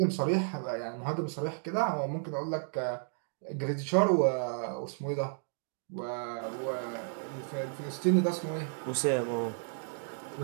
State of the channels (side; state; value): left; silent; digital silence